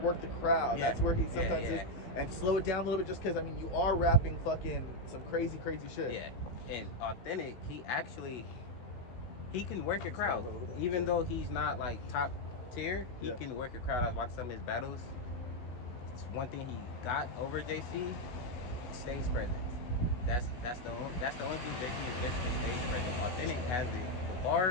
the crowd. That's where he sometimes is. And slow it down a little bit, just because, I mean, you are rapping fucking some crazy shit. Yeah, and Authentic, he can work a crowd. Even though he's not, like, top tier, he can work a crowd. I was watching some of his battles. It's one thing he got over JC, stage presence. That's the only thing JC is missing, is stage presence. Authentic has the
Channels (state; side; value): late; right; 16 ms